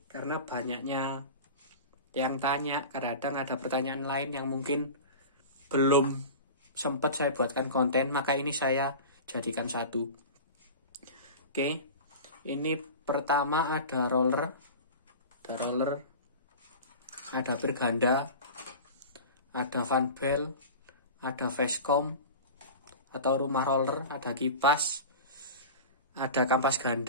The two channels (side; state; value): both; inverted; correlation -0.33